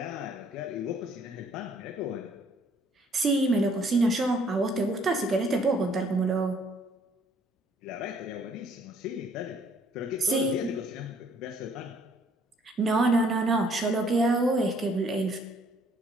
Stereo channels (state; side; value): normal; both; correlation 0.63